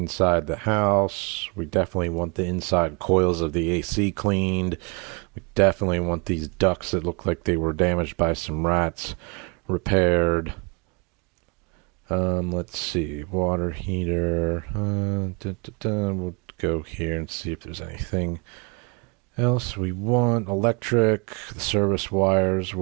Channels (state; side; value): quieter; left; 32.2 dB